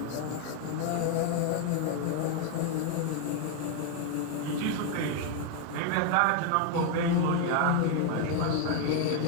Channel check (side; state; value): both; different; correlation 0.01